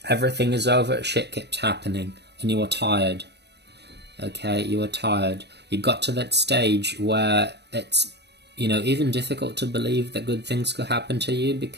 everything is over, shit keeps happening. And you are tired. Okay, you are tired. You got to that stage where it's, even difficult to believe that good things could happen to you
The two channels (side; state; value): left; late; 0.49 ms